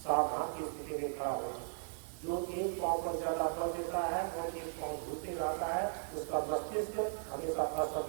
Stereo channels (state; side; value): silent; left; 53 dB below the other